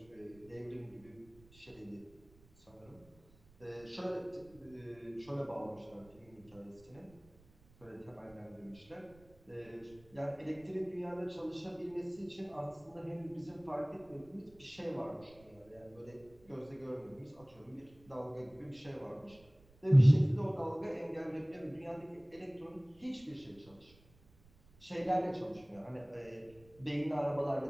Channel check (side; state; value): right; noise; rumble, 26 dB below the sound